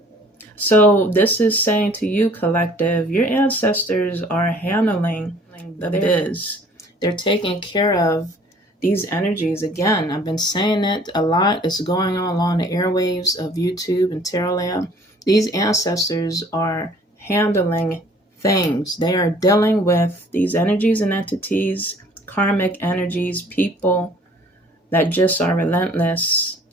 So this is saying to you, collective, your ancestors are handling the biz. They're taking care of these energies. Again, I've been saying it a lot. It's going on along the airwaves of YouTube and Terraland. These ancestors are handling things. They are dealing with these energies and entities, karmic energies, people that just are relentless.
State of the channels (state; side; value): normal; both; correlation 0.54